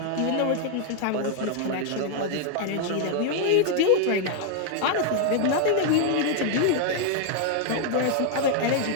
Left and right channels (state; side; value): different; both; correlation 0.00